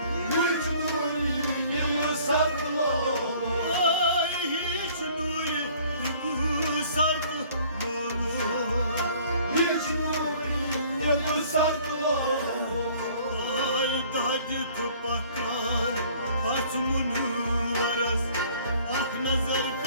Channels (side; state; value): both; inverted; correlation -0.55